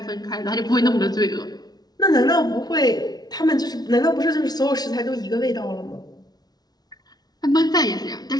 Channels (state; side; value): late; right; 0.19 ms